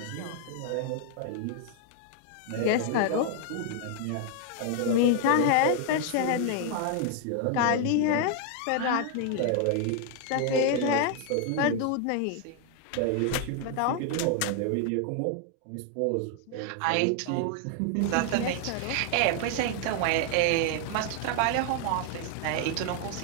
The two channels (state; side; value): different; both; correlation 0.00